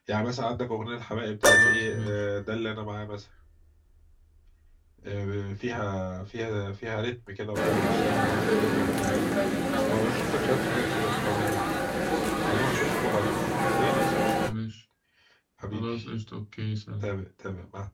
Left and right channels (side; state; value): both; identical; correlation 1.00